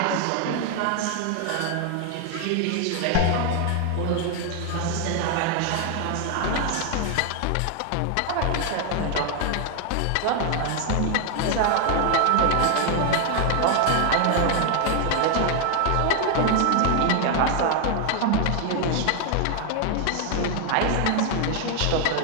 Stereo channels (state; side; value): different; both; correlation 0.00